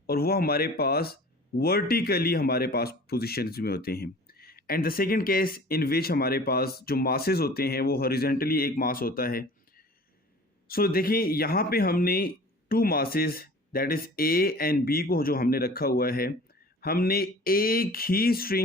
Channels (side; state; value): both; normal; correlation 0.44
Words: और वो हमारे पास वर्टिकली हमारे पास पोजीशंस में होते हैं. And the second case in which हमारे पास जो मासेस होते हैं वो हॉरिजॉन्टली एक मास होता है. सो देखिए यहाँ पे हमने two masses that is A and B को जो हमने रखा हुआ है हमने एक ही